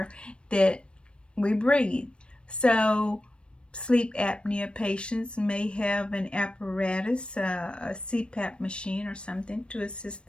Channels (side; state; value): right; late; 0.057 ms